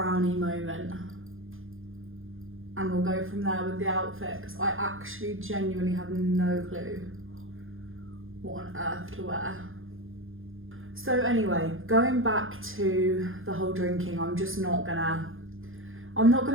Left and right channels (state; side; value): late; left; 0.59 ms